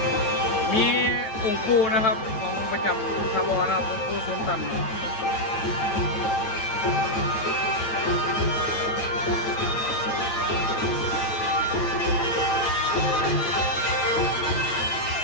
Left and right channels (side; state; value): right; late; 8.9 ms